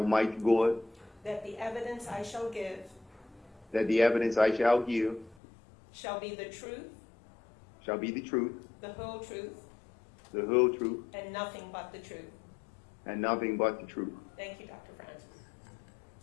God that the evidence I shall give that the evidence I shall give shall be the truth, shall be the truth, the whole truth, the whole truth, and nothing but the truth. and nothing but the truth. Thank you, Dr. Francis.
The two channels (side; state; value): right; drops out; at 5.4 s